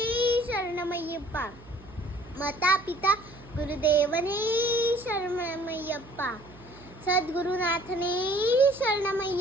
ಶರಣಮಯ್ಯಪ್ಪ. ಮಾತಾ ಪಿತಾ ಗುರುದೇವನೇ ಶರಣಮಯ್ಯಪ್ಪ. ಸದ್ಗುರುನಾಥನೇ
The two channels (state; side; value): noise; right; hum, 21 dB below the sound